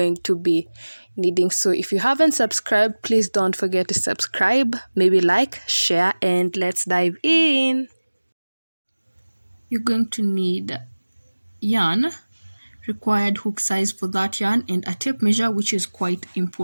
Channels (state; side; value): inverted; both; correlation -1.00